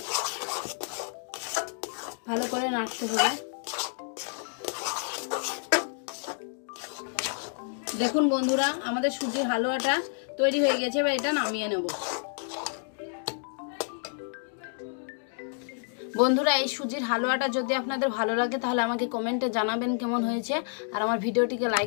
ভালো করে নাড়তে হবে। দেখুন বন্ধুরা, আমাদের সুজির হালুয়াটা তৈরি হয়ে গেছে। এবার এটা নামিয়ে নেব। বন্ধুরা, এই সুজির হালুয়াটা যদি আপনাদের ভালো লাগে তাহলে আমাকে কমেন্টে জানাবেন কেমন হয়েছে। আর আমার ভিডিওটিকে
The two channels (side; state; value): right; silent; 58 dB below the other